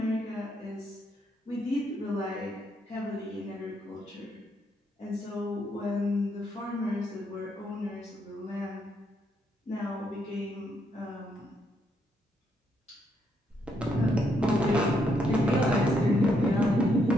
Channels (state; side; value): normal; both; correlation 0.75